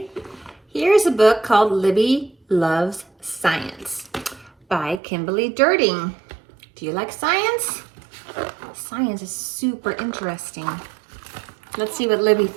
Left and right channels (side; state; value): left; drops out; at 5.0 s